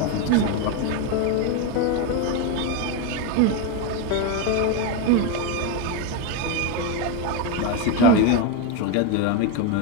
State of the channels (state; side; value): different; both; correlation 0.02